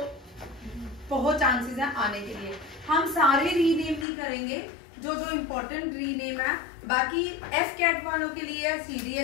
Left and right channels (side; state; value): right; drops out; at 4.0 s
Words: बहुत चांसेस हैं आने के लिए। हम सारे रीनेम नहीं करेंगे, जो जो इम्पोर्टेंट रीनेम है, बाकी एफ कैट वालों के लिए,